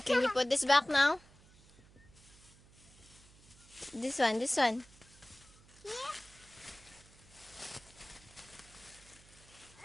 Can you put this back now? This one, this one. Yeah.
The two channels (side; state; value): right; noise; hum, 24 dB below the sound